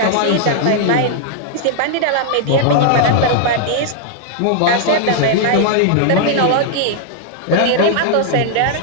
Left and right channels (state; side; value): different; both; correlation 0.00